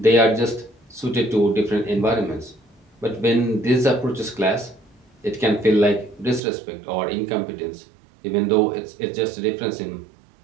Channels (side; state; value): left; drops out; at 6.4 s